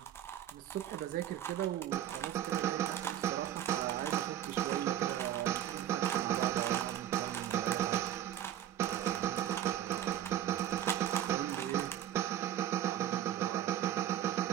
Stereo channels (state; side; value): quieter; left; 11.4 dB